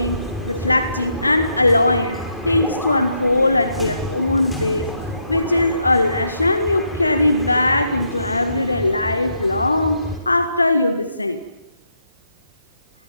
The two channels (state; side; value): inverted; both; correlation -0.78